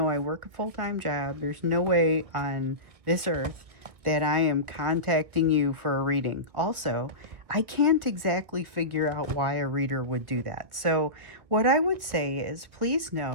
I work a full-time job. There's no way on this earth that I am contacting you for a reading. Also, I can't exactly figure out why a reader would do that. So what I would say is, please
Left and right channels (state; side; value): late; left; 1.4 ms